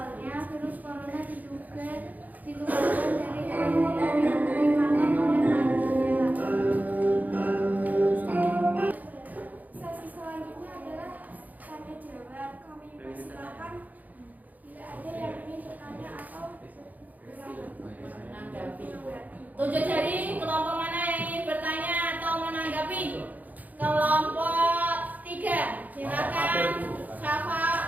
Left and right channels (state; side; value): late; left; 0.080 ms